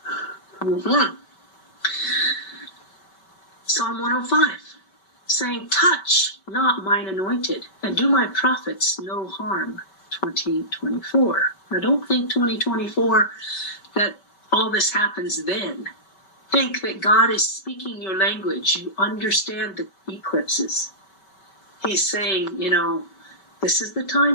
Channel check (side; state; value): right; late; 5.2 ms